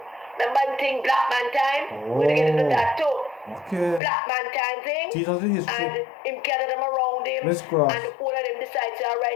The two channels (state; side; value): drops out; right; at 4.0 s